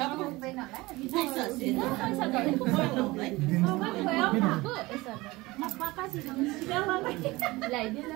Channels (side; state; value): left; quieter; 20.9 dB